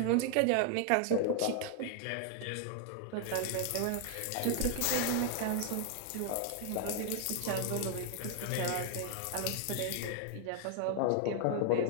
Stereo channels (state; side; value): different; both; correlation 0.00